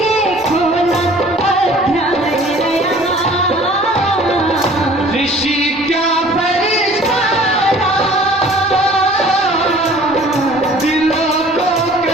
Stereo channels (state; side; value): normal; both; correlation 0.50